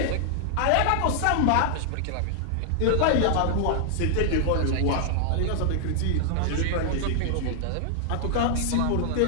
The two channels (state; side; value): different; both; correlation 0.00